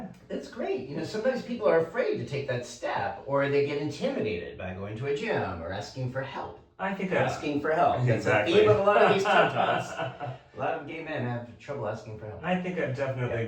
That's great. Sometimes people are afraid to take that step, or they get intimidated by going to a gym or asking for help. I think asking for help. Exactly. It's the theme of a lot of these TED Talks. A lot of gay men have trouble asking for help. I think I've definitely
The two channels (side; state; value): both; identical; correlation 1.00